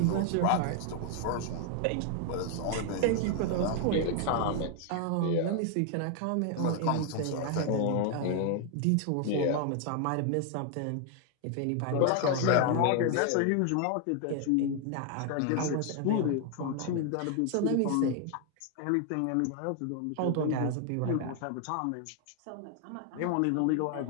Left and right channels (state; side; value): different; both; correlation 0.00